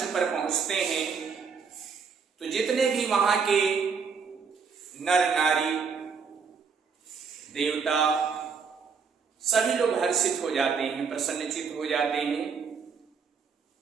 पर पहुंचते हैं तो जितने भी वहां के नर नारी देवता सभी लोग हर्षित हो जाते हैं, प्रसन्नचित हो जाते हैं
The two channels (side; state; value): left; quieter; 5.7 dB